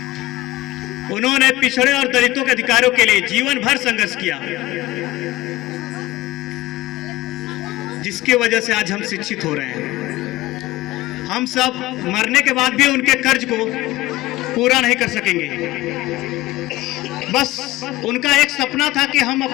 उन्होंने पिछड़े और दलितों के अधिकारों के लिए जीवन भर संघर्ष किया, जिसकी वजह से आज हम शिक्षित हो रहे हैं। हम सब मरने के बाद भी उनके कर्ज को पूरा नहीं कर सकेंगे। बस उनका एक सपना था कि हम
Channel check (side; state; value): right; quieter; 17.9 dB